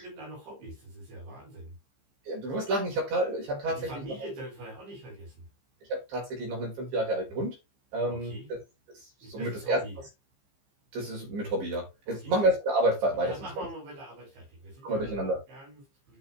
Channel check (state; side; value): late; left; 15 ms